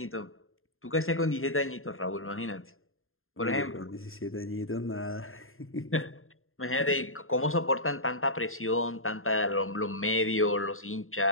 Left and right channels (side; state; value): right; late; 0.61 ms